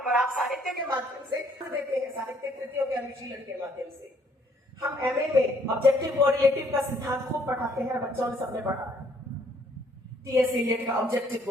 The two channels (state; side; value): normal; both; correlation 0.64